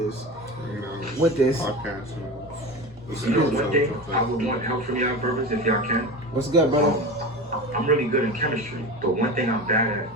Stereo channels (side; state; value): both; normal; correlation 0.27